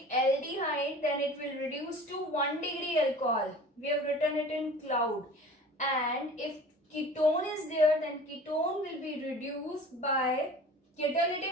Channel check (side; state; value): both; normal; correlation 0.42